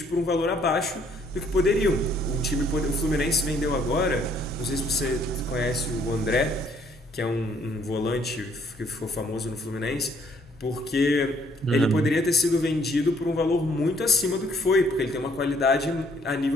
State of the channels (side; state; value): both; normal; correlation 0.63